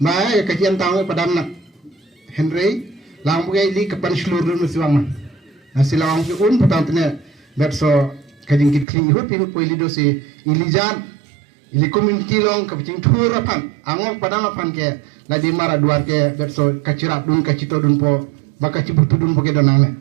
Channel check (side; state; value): left; drops out; at 8.8 s